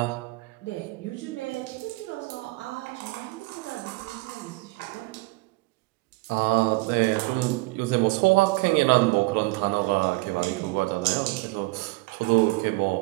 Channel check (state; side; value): quieter; left; 24.0 dB